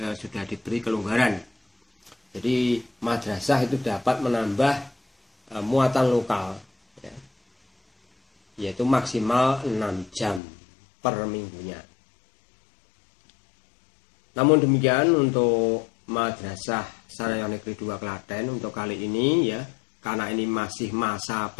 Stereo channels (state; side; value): drops out; right; at 10.4 s